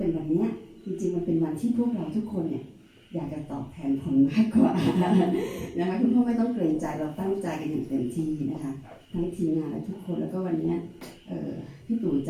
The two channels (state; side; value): identical; both; correlation 1.00